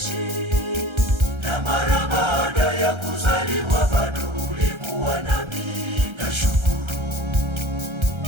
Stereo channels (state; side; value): late; left; 1.3 ms